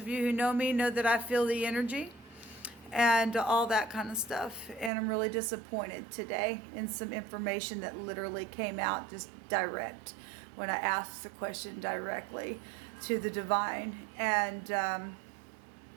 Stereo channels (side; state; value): left; drops out; at 4.9 s